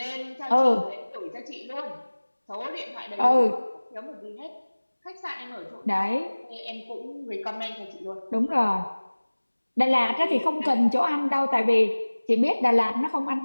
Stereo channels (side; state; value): both; inverted; correlation -1.00